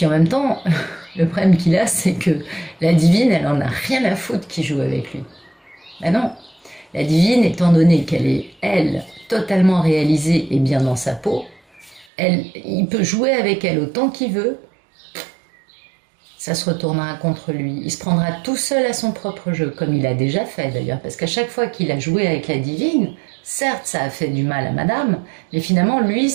en même temps, le problème qu'il a, c'est que la divine, elle en a rien à foutre qui joue avec lui. Ben non, la divine, étant donné qu'elle est, elle, totalement réalisée et bien dans sa peau, il peut jouer avec elle autant qu'il veut, ça se retournera contre lui. Il se prendra tout seul à son propre jeu, comme il a déjà fait d'ailleurs, parce qu'à chaque fois qu'il a joué avec la divine, certes ça a fait du mal à madame, mais finalement lui,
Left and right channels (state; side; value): drops out; left; at 12.1 s